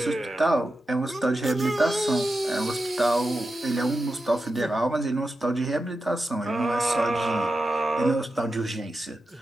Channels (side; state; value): both; normal; correlation 0.90